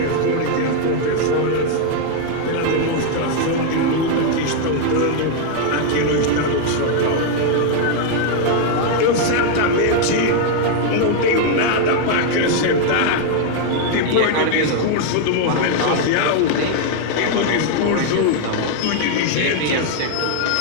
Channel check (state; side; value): different; both; correlation 0.00